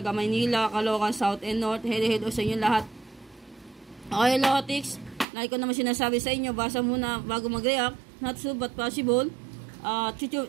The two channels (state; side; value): drops out; left; at 5.2 s